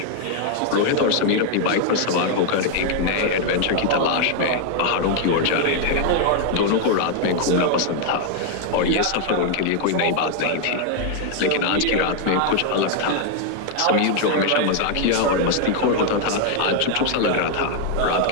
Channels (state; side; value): different; both; correlation 0.00